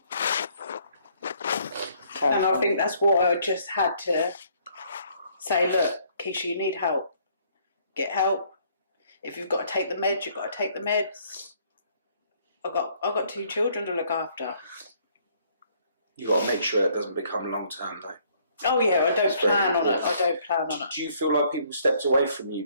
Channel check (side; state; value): both; inverted; correlation -0.64